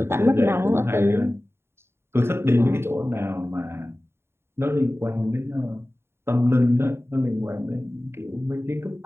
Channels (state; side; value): late; left; 0.12 ms